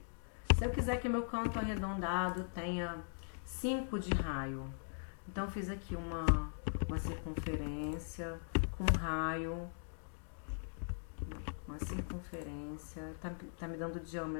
Se eu quiser que o meu canto arredondado tenha 5 de raio, então eu fiz aqui uma circunferência com raio, uma circunferência, tá me dando o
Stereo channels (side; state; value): right; silent; digital silence